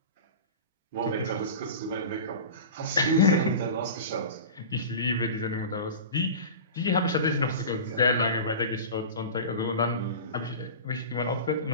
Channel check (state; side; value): inverted; both; correlation -0.32